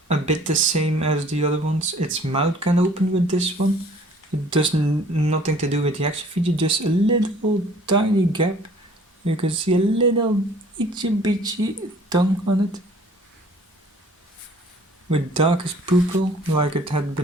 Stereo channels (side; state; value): both; normal; correlation 0.53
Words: a bit the same as the other ones. Its mouth can open with this one. It does nothing to do with the action feature, just a little tiny gap. You can see a little itchy bitchy tongue on it, with darkest pupil like it had